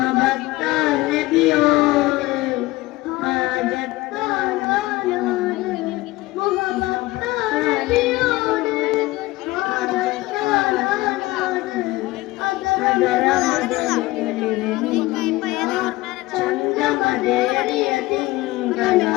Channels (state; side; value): quieter; right; 19.5 dB